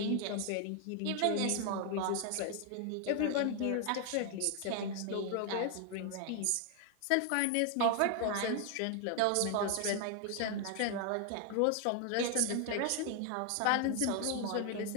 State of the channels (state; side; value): different; both; correlation 0.00